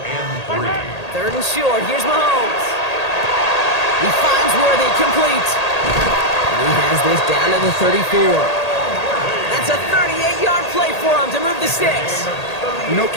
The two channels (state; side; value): late; right; 1.8 ms